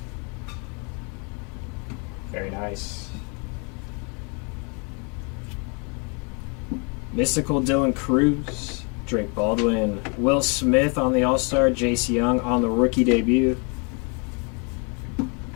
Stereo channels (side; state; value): right; quieter; 35.0 dB